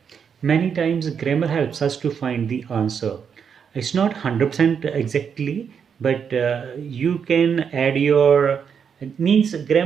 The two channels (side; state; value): left; quieter; 7.0 dB